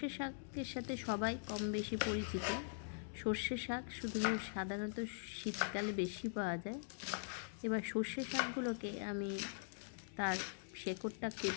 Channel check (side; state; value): right; silent; digital silence